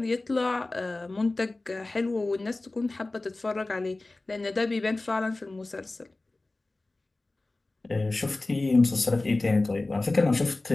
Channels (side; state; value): right; quieter; 3.0 dB